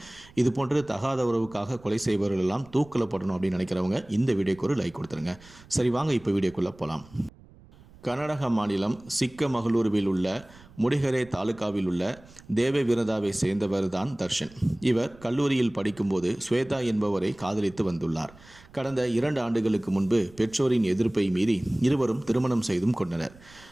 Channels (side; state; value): right; noise; rumble, 24 dB below the sound